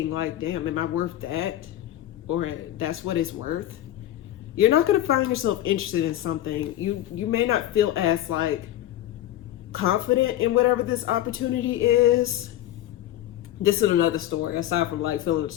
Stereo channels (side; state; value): right; quieter; 13.1 dB